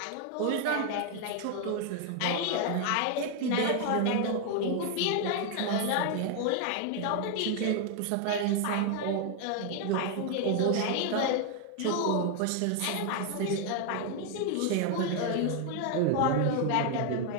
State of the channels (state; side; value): different; both; correlation 0.00